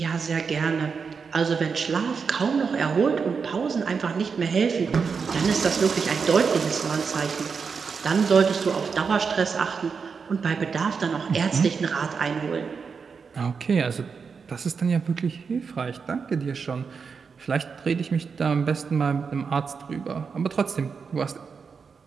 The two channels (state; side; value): quieter; left; 5.6 dB